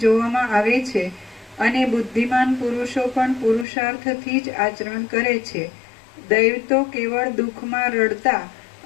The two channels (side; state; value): right; drops out; at 3.7 s